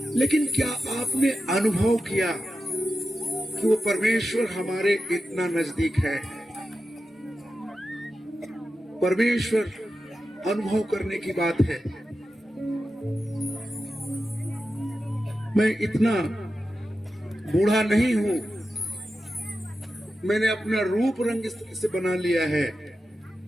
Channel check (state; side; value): normal; both; correlation 0.91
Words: लेकिन क्या आपने अनुभव किया कि वो परमेश्वर हमारे इतना नजदीक है? परमेश्वर अनुभव करने की बात है। मैं इतना बूढ़ा नहीं हूं, मैंने अपना रूप रंग इस तरह से बना लिया है।